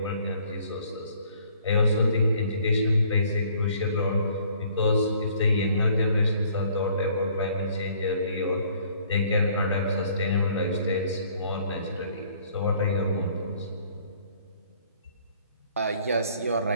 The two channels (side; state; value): both; inverted; correlation -0.59